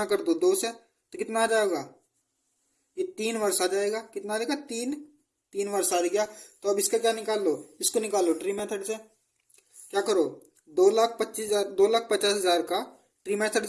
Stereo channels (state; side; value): identical; both; correlation 1.00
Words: कर दो 2 से, तो कितना आ जाएगा, ये 3 वर्ष आ जाएगा। कितना आ जाएगा, 3 वर्ष आ गया। तो अब इसका क्या निकाल लो, इसको निकाल लो ट्री मेथड से। क्या करो, 2,50,000 का ट्री मेथड